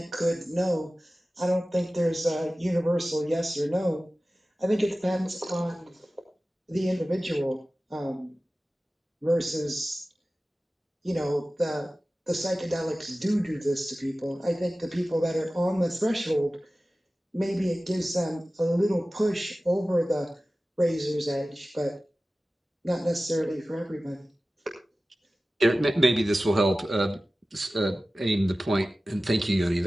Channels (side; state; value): both; normal; correlation 0.96